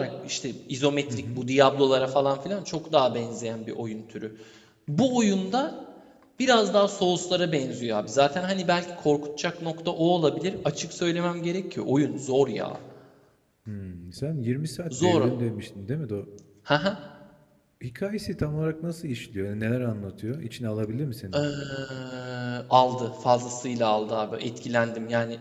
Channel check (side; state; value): both; identical; correlation 1.00